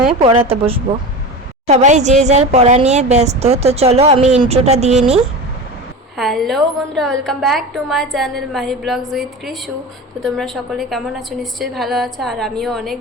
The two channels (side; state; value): both; normal; correlation 0.28